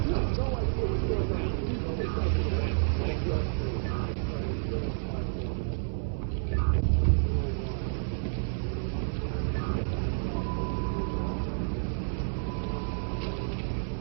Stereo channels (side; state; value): left; silent; 58 dB below the other